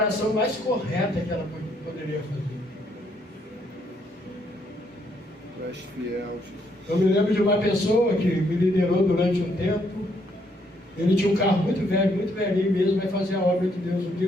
mais correta que ela poderia fazer. Tu és fiel, Jesus. Eu me lembro de uma pessoa que me liderou durante um tempo. Ele tinha um carro muito velho, muito velhinho mesmo, vai fazer a obra de Deus. Um dia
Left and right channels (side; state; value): both; normal; correlation 0.72